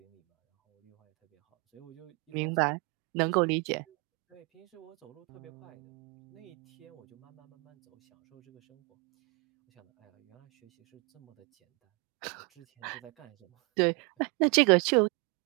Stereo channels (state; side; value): quieter; left; 30.0 dB